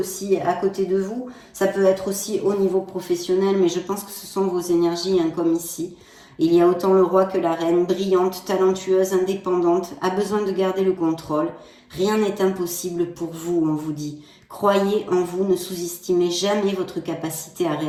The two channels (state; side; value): identical; both; correlation 1.00